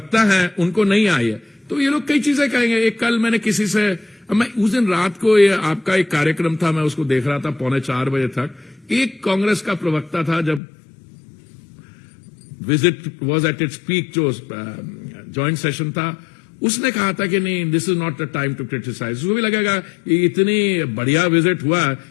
है उनको नहीं आई है। तो ये लोग कई चीजें कहेंगे। एक कल मैंने किसी से, मैं उस दिन रात को, ये आपका एक कार्यक्रम था, मैं उसको देख रहा था 3:45 बजे तक। एक कांग्रेस का प्रवक्ता था, जब visit was at its peak, जो ज्वाइंट सेशन था, उसने कहा था कि नहीं, this is not the time to criticise. उसको भी लगेगा कि इतनी बढ़िया विजिट हुआ,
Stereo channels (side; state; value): right; drops out; at 10.6 s